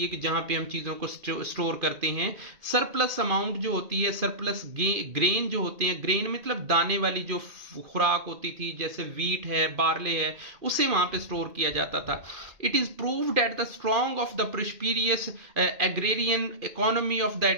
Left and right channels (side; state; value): left; late; 2.5 ms